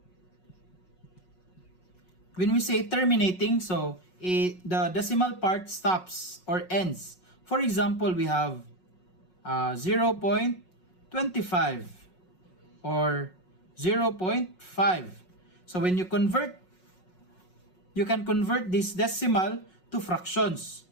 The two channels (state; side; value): late; right; 5.5 ms